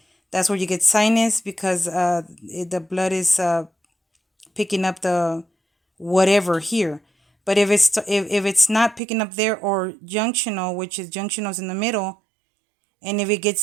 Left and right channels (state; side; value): drops out; left; at 9.0 s